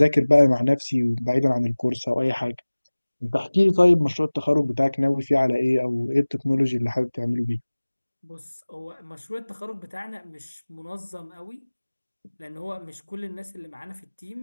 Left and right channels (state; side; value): inverted; both; correlation -1.00